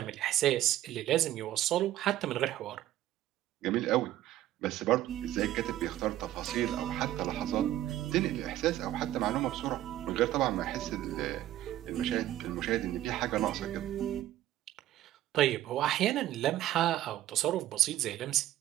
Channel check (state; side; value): quieter; left; 13.7 dB